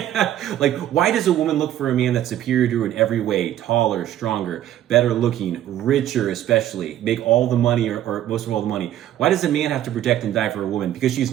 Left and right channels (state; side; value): quieter; left; 12.2 dB